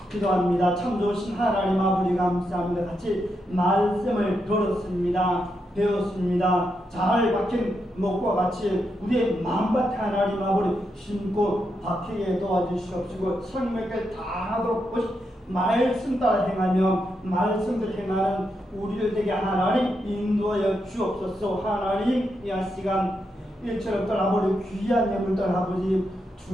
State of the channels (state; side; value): normal; both; correlation 0.83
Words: 기도합니다. 참 좋으신 하나님 아버지 감사합니다. 같이 말씀을 들었습니다. 배웠습니다. 잘 박힌 목과 같이 우리의 마음밭에 하나님 아버지 심고 박히게 도와주시옵시고 생명을 다하도록 말씀 따라 행하며 말씀을 행하는 우리를 되게 하나님 인도하여 주옵소서. 하나님 이 시간 일처럼 아버지 귀한 예물들 아버지